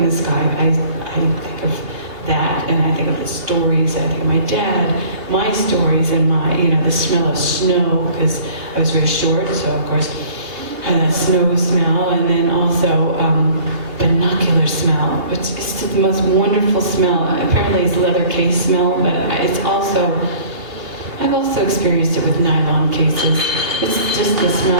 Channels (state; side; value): late; left; 3.0 ms